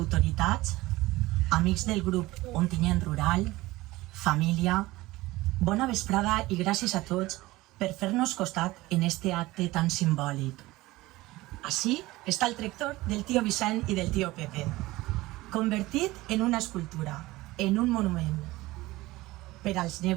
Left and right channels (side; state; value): left; quieter; 19.1 dB